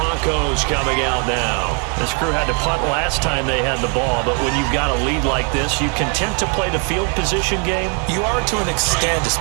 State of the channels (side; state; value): left; quieter; 38.0 dB